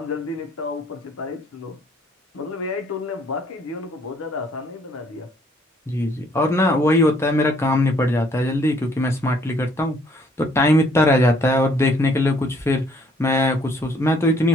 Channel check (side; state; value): both; normal; correlation 0.63